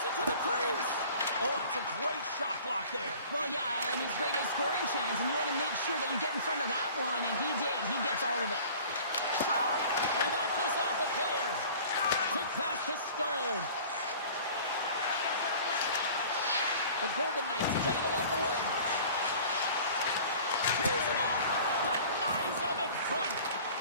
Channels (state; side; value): inverted; both; correlation -0.45